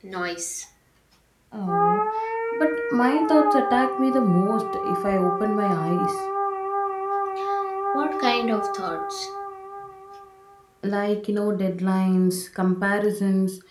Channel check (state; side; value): identical; both; correlation 1.00